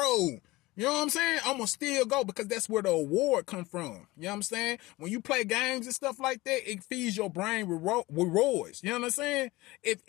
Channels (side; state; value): right; quieter; 20.2 dB